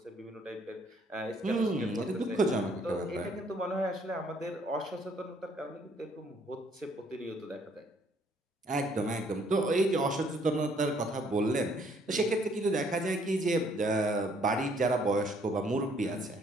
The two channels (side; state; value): both; normal; correlation 0.65